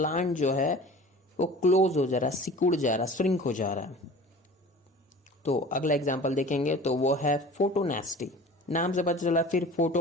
जो है वो क्लोज हो जा रहा, सिकुड़ जा रहा, श्रिंक हो जा रहा है। तो अगला एग्जाम्पल देखेंगे तो वो है फोटोनेस्टी। नाम से पता चला, फिर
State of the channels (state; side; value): normal; both; correlation 0.41